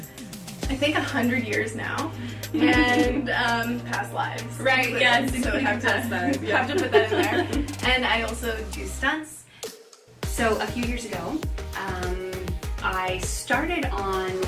think 100 years now. And past lives. Right, yes. So I have to put that in there. And I also do stunts. So a few years ago, I started on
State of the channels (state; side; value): identical; both; correlation 1.00